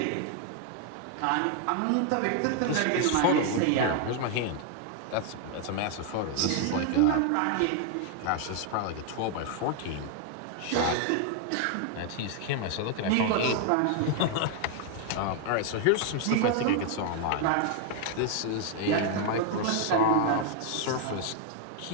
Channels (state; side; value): different; both; correlation 0.00